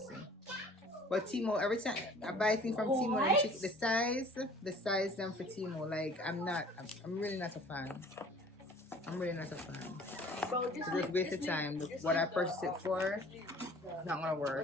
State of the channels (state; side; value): normal; both; correlation 0.49